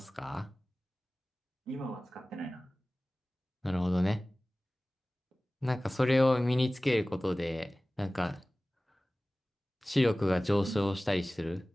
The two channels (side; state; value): both; normal; correlation 0.98